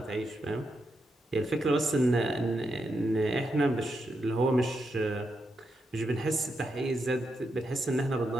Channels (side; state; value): both; normal; correlation 0.84